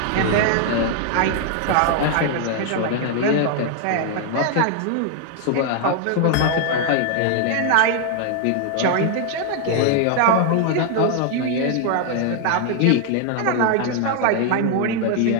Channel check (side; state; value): both; different; correlation 0.00